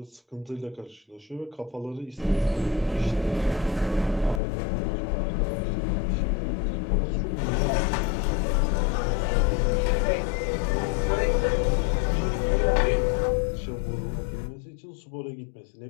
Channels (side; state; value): right; drops out; at 4.4 s